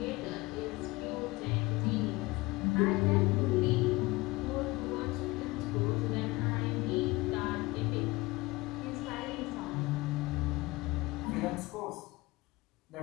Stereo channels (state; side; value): quieter; right; 22.0 dB